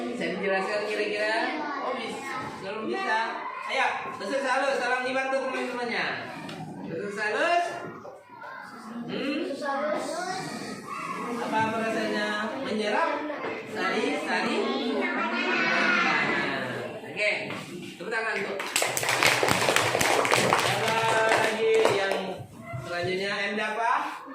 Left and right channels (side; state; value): both; identical; correlation 1.00